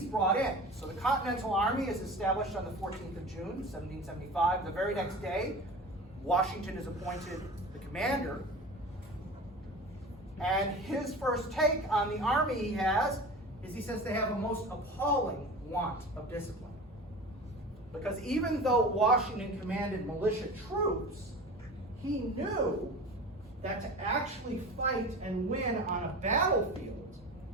brought in. So the Continental Army is established on the 14th of June, 1775. The very next day, Washington is appointed the commander. And his first take on the army he has is he says they have a most appalling want of discipline. Because even though Washington commanded militia troops, he knew that to actually fight and win on a battlefield,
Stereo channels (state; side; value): normal; both; correlation 0.35